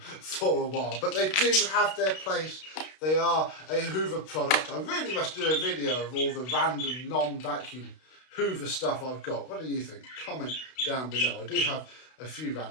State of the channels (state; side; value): late; right; 32 ms